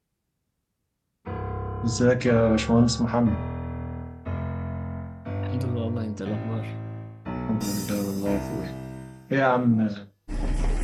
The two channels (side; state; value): both; identical; correlation 1.00